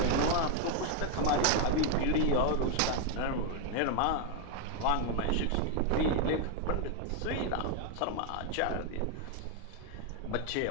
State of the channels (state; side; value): different; both; correlation 0.00